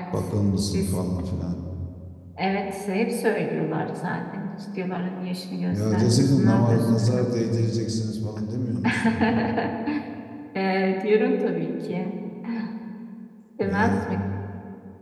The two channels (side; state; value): both; identical; correlation 1.00